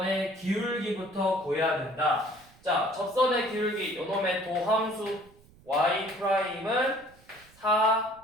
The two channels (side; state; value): right; noise; rumble, 27 dB below the sound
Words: 기울기부터 구해야 된다. 자, 접선의 기울기 요놈의 도함수 y 프라임은